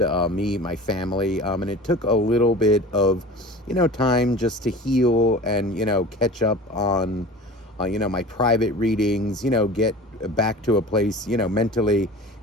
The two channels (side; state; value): both; normal; correlation 0.38